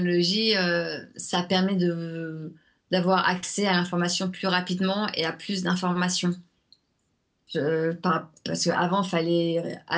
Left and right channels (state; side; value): identical; both; correlation 1.00